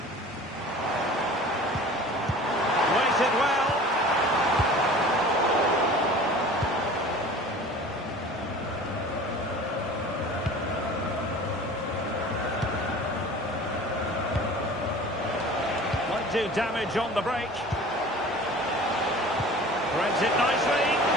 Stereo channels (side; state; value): both; normal; correlation 0.42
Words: Waited well. Might do damage on the break. Threads it nicely.